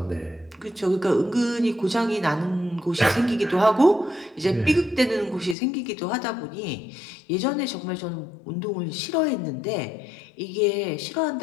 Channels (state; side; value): drops out; right; at 5.6 s